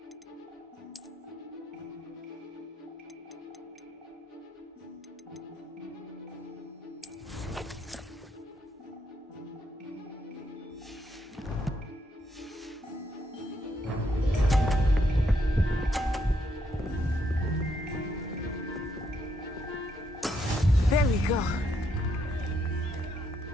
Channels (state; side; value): normal; both; correlation 0.76